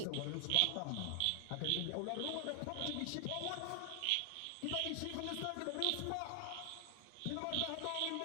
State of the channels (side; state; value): both; different; correlation 0.00